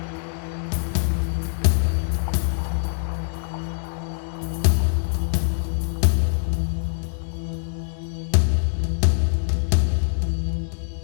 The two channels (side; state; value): right; silent; digital silence